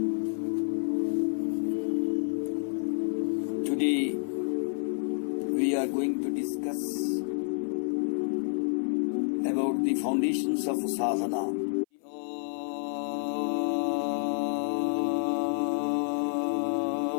Today we are going to discuss about the foundations of sadhana.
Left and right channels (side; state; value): right; silent; 56 dB below the other